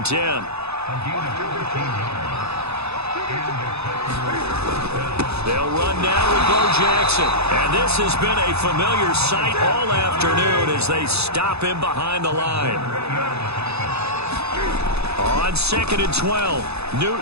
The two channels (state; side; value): late; left; 0.79 ms